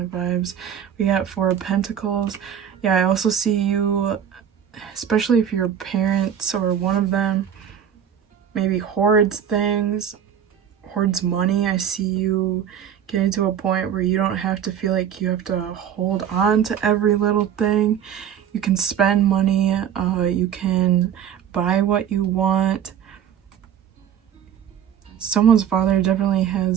of vibes. We got Four of Pentacles. Yeah, I also see you, especially if your parents or one of them maybe hoards things, hoards money. I see you getting to a point where you don't have to feel like you have to hold on to every little thing. You can spend money, you can buy what you want. Someone's father definitely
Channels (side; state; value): left; quieter; 9.1 dB